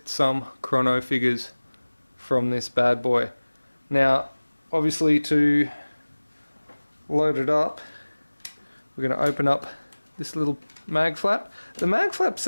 some chrono figures from this bad boy. Now, obviously to load it up, we're going to open up this little mag flap. The mag flap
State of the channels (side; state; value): both; inverted; correlation -1.00